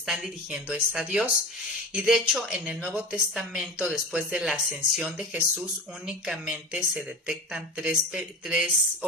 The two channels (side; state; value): both; normal; correlation 0.30